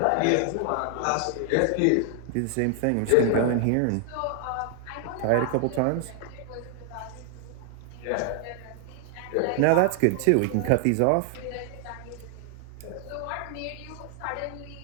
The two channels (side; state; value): both; different; correlation 0.00